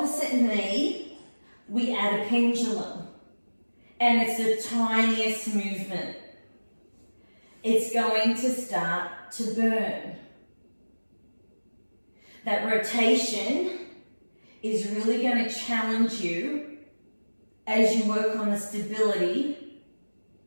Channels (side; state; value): both; inverted; correlation -1.00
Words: knee, we add a pendulum. And it's the tiniest movement. it's going to start to burn. That rotation is really going to challenge you as you work on the stability